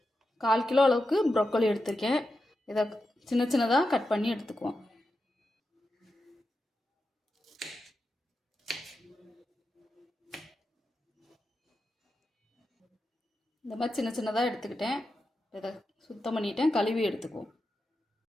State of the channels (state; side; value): normal; both; correlation 0.89